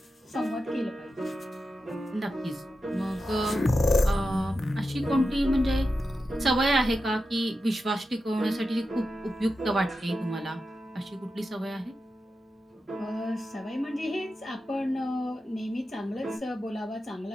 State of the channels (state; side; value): normal; both; correlation 0.90